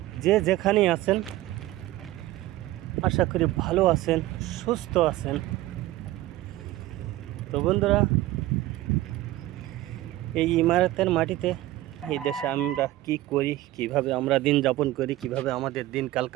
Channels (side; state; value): left; quieter; 16.4 dB